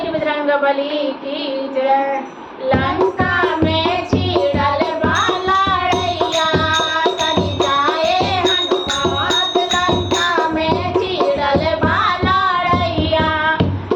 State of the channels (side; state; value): both; identical; correlation 1.00